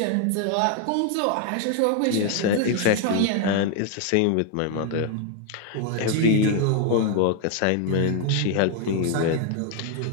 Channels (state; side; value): different; both; correlation 0.00